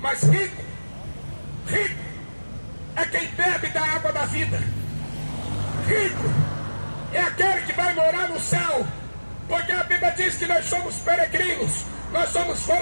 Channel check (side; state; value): both; inverted; correlation -1.00